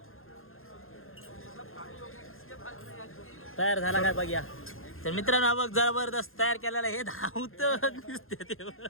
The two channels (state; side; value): late; right; 0.60 ms